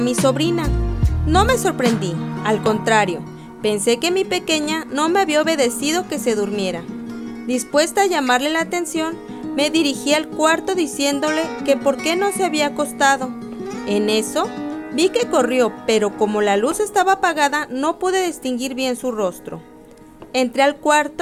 sobrina. No me sorprendí, al contrario, pensé que mi pequeña no me había obedecido que se durmiera. Dispuesta a llamarle la atención, me dirigí al cuarto diciéndole que por qué no se había acostado. En eso, vi que corrió, pero como la luz estaba apagada, no pude distinguir bien su rostro. Entré al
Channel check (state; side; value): identical; both; correlation 1.00